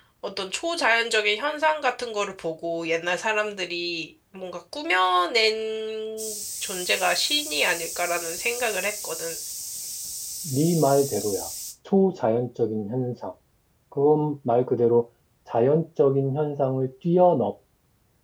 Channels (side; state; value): both; identical; correlation 1.00